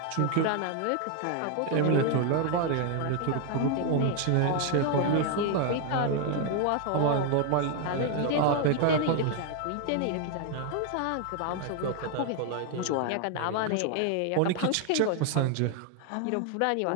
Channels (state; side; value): different; both; correlation 0.00